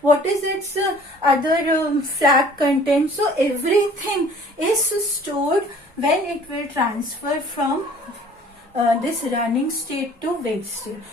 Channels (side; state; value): both; normal; correlation 0.52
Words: what is its other flag content. So everything is stored when it will transfer from this running state to wait state.